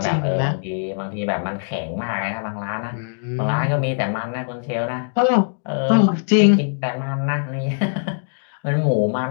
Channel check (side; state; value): right; silent; digital silence